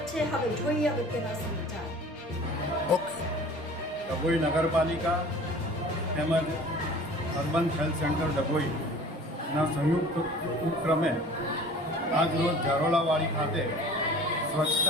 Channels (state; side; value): normal; both; correlation 0.45